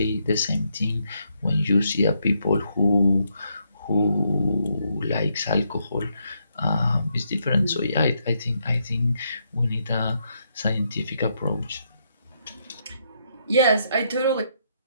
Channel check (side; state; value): both; inverted; correlation -0.77